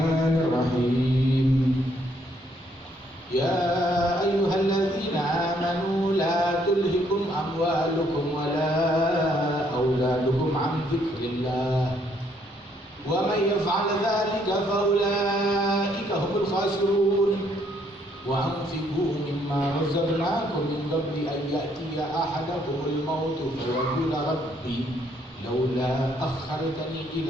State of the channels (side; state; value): both; normal; correlation 0.69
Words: Ya ayyuhalladzina amanu la tulhikum amwalukum wala auladukum an dzikrillah. Wa man yaf'al dzalika fa ulaika humul khasirun. Wa anfiqu mimma razaqnakum min qabli an ya'tiya ahadakumul maut fa yaqula rabbi laula akhartani